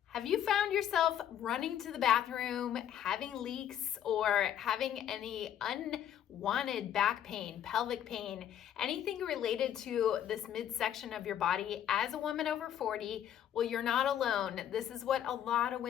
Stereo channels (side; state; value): right; quieter; 10.2 dB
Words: Have you found yourself running to the bathroom, having leaks, or having any unwanted back pain, pelvic pain, anything related to this midsection of your body as a woman over 40? Well, you're not alone. This is what a lot of